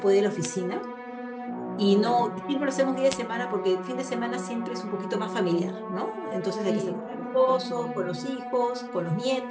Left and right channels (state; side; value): identical; both; correlation 1.00